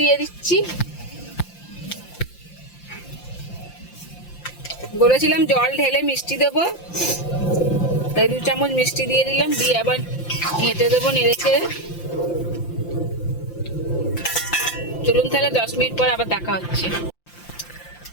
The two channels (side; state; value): right; late; 5.8 ms